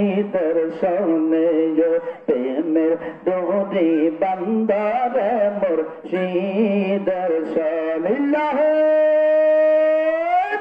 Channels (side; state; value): both; identical; correlation 1.00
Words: সনে প্রেমের ডোরি বন্ধ রে মুর্শিদের সনে